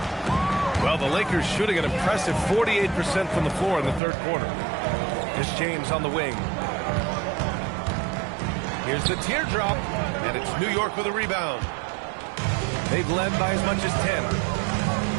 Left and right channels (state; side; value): drops out; left; at 4.0 s